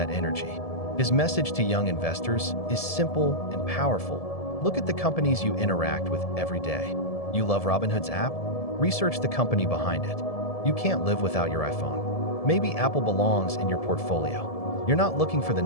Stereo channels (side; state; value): right; late; 1.7 ms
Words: energy. His message to young investors is simple and powerful. Look at the companies you interact with every day. You love Robinhood's app? Research the company behind it. You can't live without your iPhone. Maybe Apple belongs in your portfolio. You're not looking for the